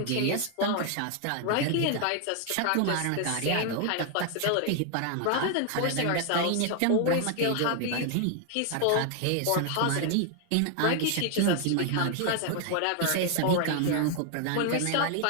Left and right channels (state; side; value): different; both; correlation 0.00